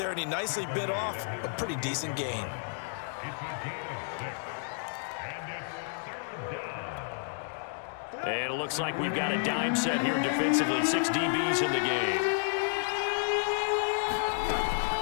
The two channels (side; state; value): right; silent; digital silence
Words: and he nicely bit off a pretty decent gain. And it looks like we've got a dime set here defensively. 6 DBs in the game.